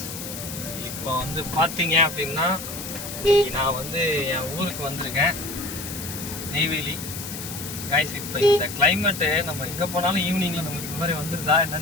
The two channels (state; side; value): noise; left; hiss, 9 dB below the sound